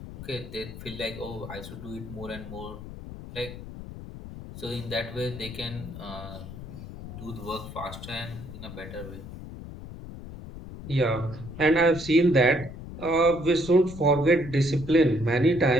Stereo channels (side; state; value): left; noise; rumble, 12 dB below the sound